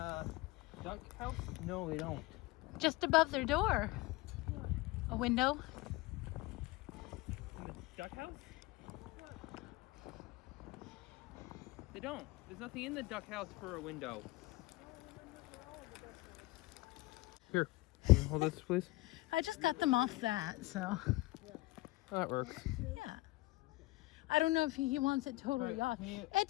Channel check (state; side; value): quieter; right; 20.5 dB